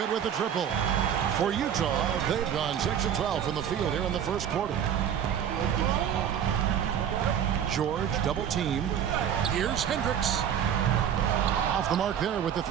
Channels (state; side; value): quieter; left; 9.1 dB